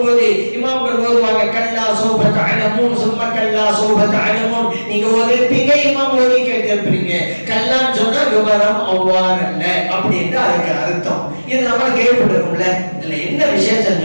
இமாம்கள் ஓதுவாங்க, கல்லா சௌஃப தஅலமூன் சும்ம கல்லா சௌஃப தஅலமூன். நீங்க ஓதிருப்பீங்க, இமாம் ஓதி கேட்டிருப்பீங்க. கல்லான்னு சொன்னா விவரம் அவ்வாறு அல்ல அப்படின்ற அதுக்கு அர்த்தம். இது நம்ம கேள்விப்பட்டிருக்கோம்ல. இதுல என்ன விசேஷம்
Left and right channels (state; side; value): inverted; both; correlation -1.00